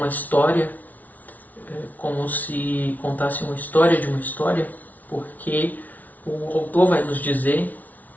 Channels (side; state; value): right; late; 0.076 ms